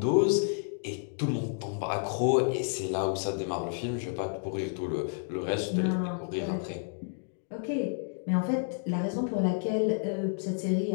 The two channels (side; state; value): right; silent; 58 dB below the other